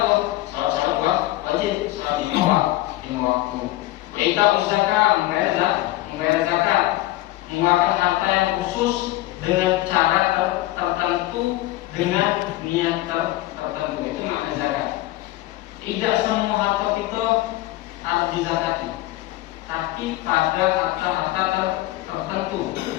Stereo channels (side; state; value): right; quieter; 16.8 dB